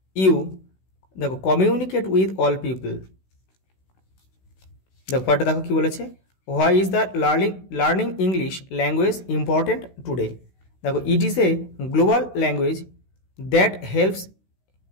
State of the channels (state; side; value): late; right; 16 ms